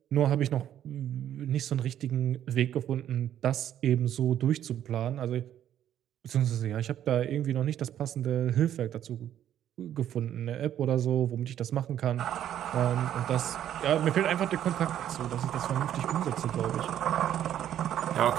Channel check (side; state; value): left; quieter; 10.9 dB